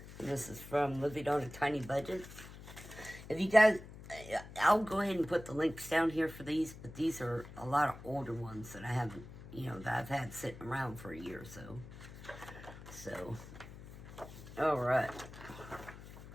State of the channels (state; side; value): noise; left; hum, 15 dB below the sound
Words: And this is from Living on a Tiny Budget. If you guys, I'll go ahead and put the links down here for these, but these are a lot of older ones that I haven't, that I've had sitting around for a year or so. So, alright.